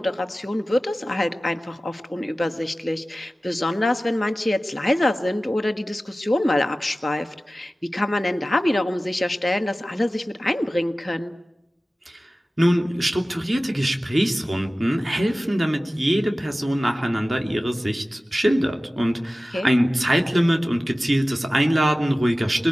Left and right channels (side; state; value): both; normal; correlation 0.96